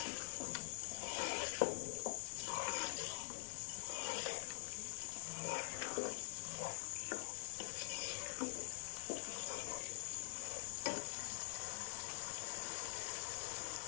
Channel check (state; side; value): silent; right; digital silence